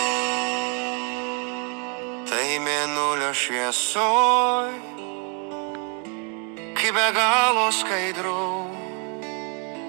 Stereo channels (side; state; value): left; quieter; 36.5 dB